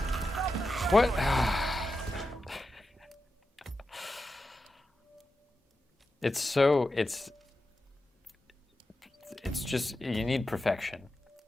What? It's just, you need perfection.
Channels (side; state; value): both; normal; correlation 0.90